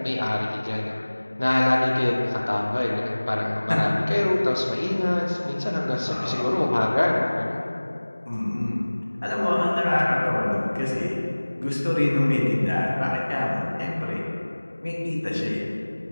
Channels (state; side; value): inverted; both; correlation -1.00